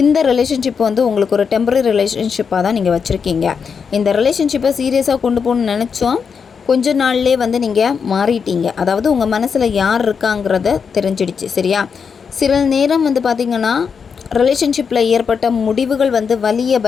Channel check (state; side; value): quieter; right; 6.2 dB